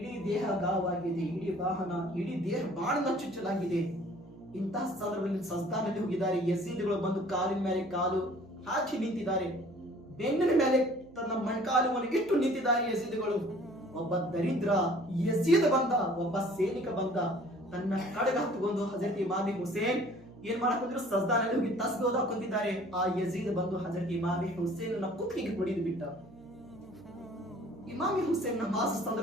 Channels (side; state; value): right; noise; hum, 23 dB below the sound